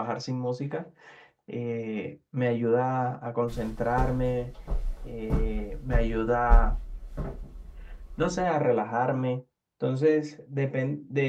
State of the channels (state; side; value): identical; both; correlation 1.00